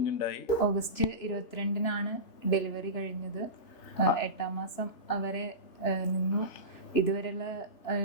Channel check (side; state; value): right; late; 2.9 ms